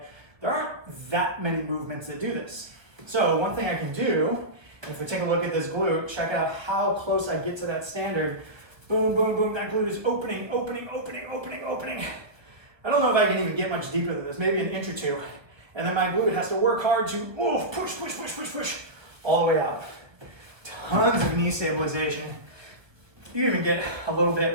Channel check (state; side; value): late; left; 1.1 ms